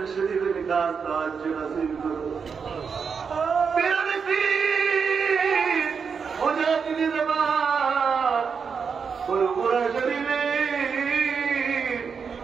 শরীরের খাস তাওয়াজ্জু নসিব করো। মুজাহিদি জামাত পুরপুরা শরীরে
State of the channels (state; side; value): quieter; left; 6.0 dB